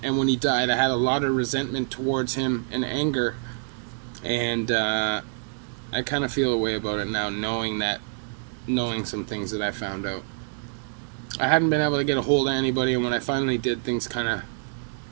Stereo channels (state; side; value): silent; left; digital silence